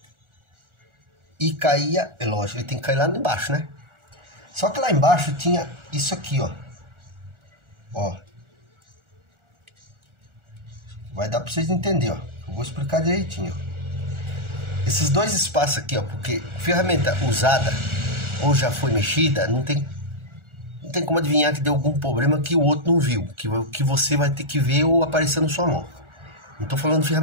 E caía, é lógico, ele tem que cair lá embaixo, né? Só que lá embaixo tinha isso aqui, ó. Ó. Vai dar para vocês entenderem, ó. Eu vou explicar direitinho, ó. Esses dois espaços aqui, ó. Porque ferramenta usada ou já foi mexida, não tem como adivinhar que deu algum problema que o outro não viu. Que você vai ter que ver ou aparecer na sua mão. Não tô falando de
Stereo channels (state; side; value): late; left; 1.4 ms